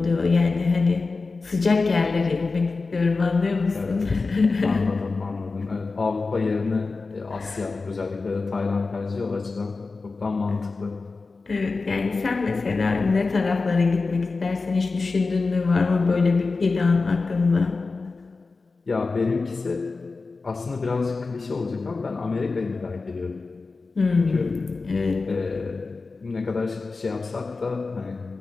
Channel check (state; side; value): quieter; right; 4.0 dB